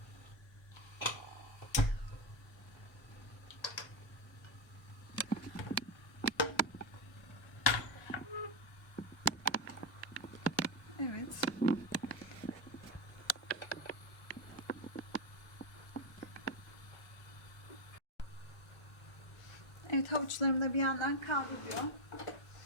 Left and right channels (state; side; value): late; right; 1.3 ms